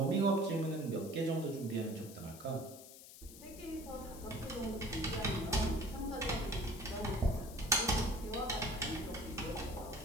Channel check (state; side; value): noise; left; hiss, 16 dB below the sound